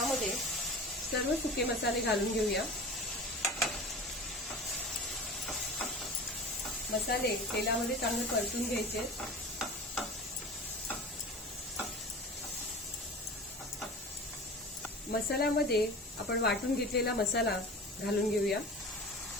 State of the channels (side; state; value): both; normal; correlation 0.36